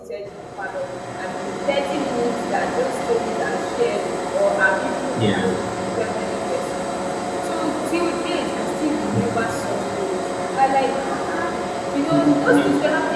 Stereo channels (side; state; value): both; identical; correlation 1.00